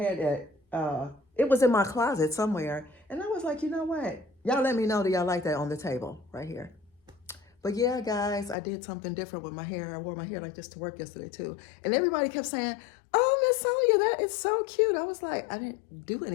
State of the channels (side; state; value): right; drops out; at 8.6 s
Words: it. It was in my closet somewhere. And I was like, you know what? Y'all let me know that y'all like that on the table right here. But yeah, guys, I did something different with my hair. I wore my hair like this to work yesterday too. And everybody kept saying, oh, Miss Sonia, that is so cute. I was like, I didn't do